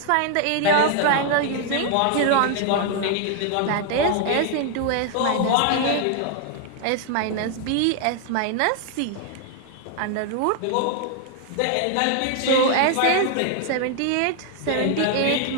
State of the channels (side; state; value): both; different; correlation 0.00